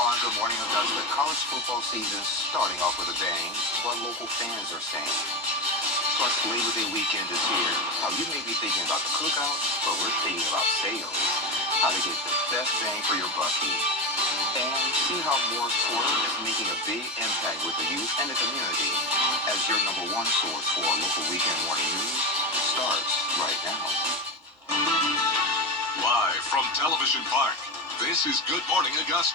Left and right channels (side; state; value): both; normal; correlation 0.18